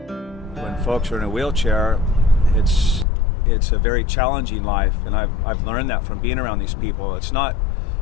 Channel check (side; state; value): right; drops out; at 3.1 s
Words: When folks are in a wheelchair, it's a very challenging life, and I've learned that from being around these people. It's not